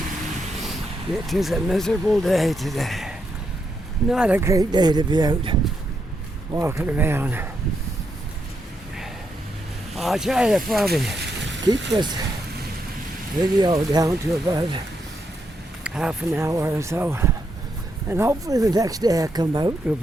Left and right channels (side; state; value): both; normal; correlation 0.80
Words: It is a miserable day today. Not a great day to be out walking around. I'll try to probably keep this video down to about half an hour or so. And hopefully the next day I come out will